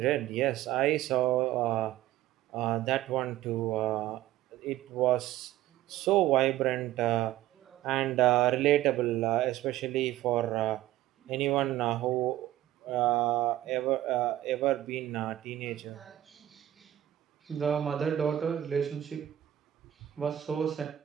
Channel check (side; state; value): left; quieter; 13.7 dB